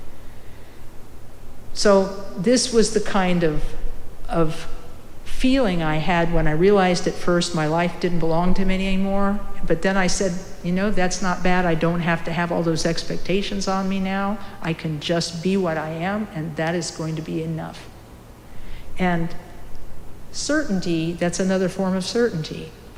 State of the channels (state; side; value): identical; both; correlation 1.00